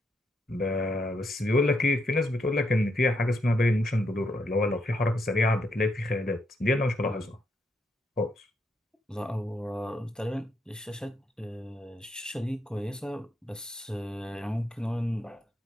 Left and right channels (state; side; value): normal; both; correlation 0.78